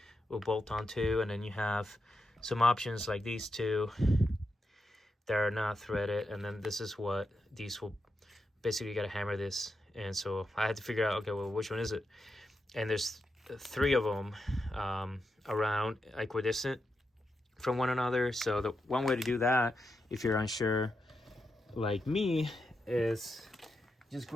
will bolt onto, and then you have some options like these two that are not threaded, and then this is what these will basically, you got to hammer this. And so I had to figure out, okay, well, which one is it? And there's three of them around equidistant from one another. So the one way to do that, if you're unsure like me, is just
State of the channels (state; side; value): normal; both; correlation 0.86